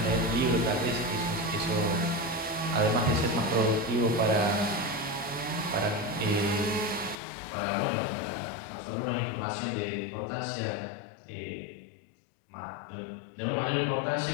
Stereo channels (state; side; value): drops out; right; at 7.2 s